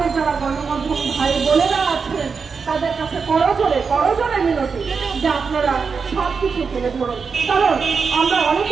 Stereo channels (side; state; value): left; quieter; 5.4 dB